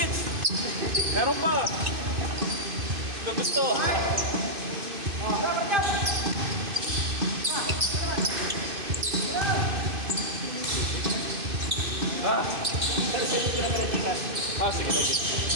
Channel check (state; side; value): late; left; 2.5 ms